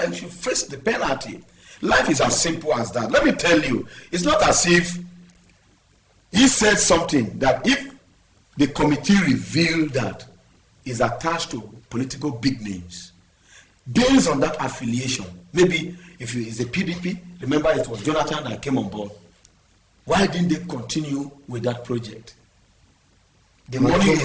should face the penalty. Life is as simple as that. Let me tell you, it's not as if he said something that if the committee revealed that is attached to political big names, based on that affiliation, maybe if it's a PDP, remember it was Jonathan that came on board. Why didn't they continue with that project? The money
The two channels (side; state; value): both; identical; correlation 1.00